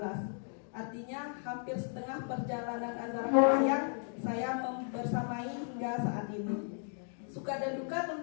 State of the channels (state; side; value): silent; right; 54 dB below the other